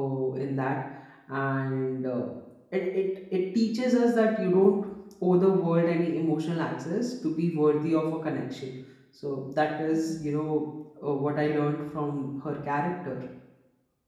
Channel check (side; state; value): both; identical; correlation 1.00